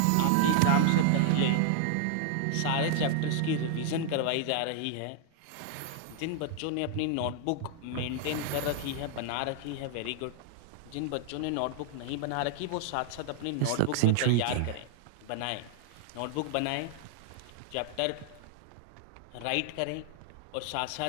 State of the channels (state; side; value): different; both; correlation 0.00